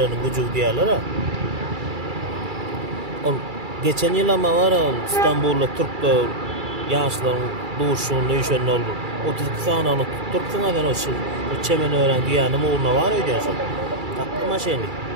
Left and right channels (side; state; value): left; late; 2.3 ms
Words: güjü diýerler ha. Ol geçen ýyl ama var İstanbulda Türkler ýaşlaryň duşuny ýeşen boldy. 32 sanyny tutturpsyň adan o çemen ören diýänim urna var öýdäşim. Tatlı maşyny.